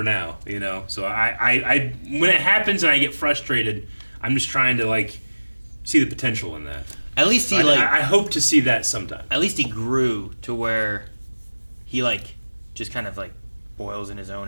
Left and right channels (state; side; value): inverted; both; correlation -1.00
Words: now, you know. So I when it happens and I get frustrated, I'm just trying to like see the potential in that. At least he I hope to see that sometime. At least he grew to where he like just kind of like boils in his own